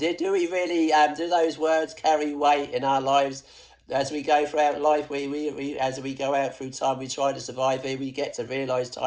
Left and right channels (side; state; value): both; identical; correlation 1.00